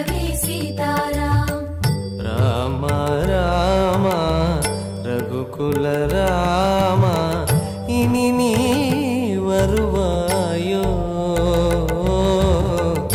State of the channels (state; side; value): identical; both; correlation 1.00